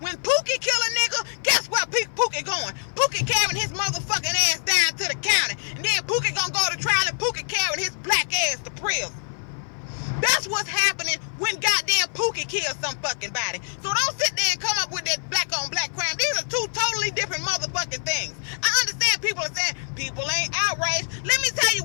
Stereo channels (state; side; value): silent; right; 55 dB below the other